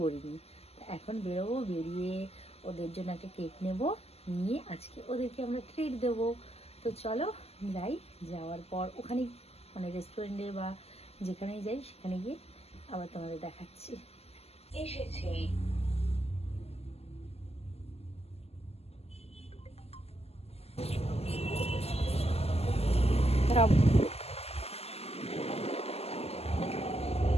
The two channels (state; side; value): late; right; 0.29 ms